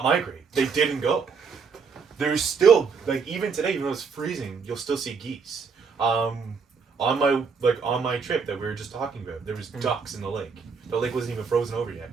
migrate. They didn't go. There's still, like, even today, even though it's freezing, you'll still see geese. On my trip that we were just talking about, there was ducks in the lake. The lake wasn't even frozen over yet.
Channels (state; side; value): quieter; left; 5.5 dB